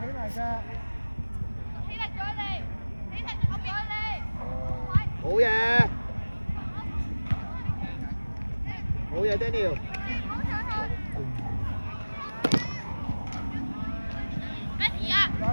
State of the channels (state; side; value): inverted; both; correlation -1.00